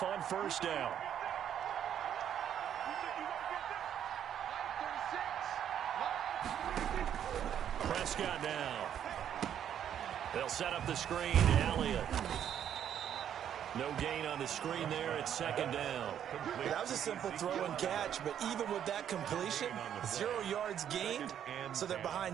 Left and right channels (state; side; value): quieter; left; 9.6 dB